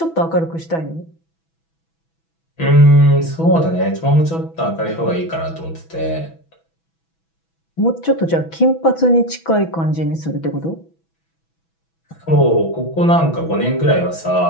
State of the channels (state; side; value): late; right; 6.1 ms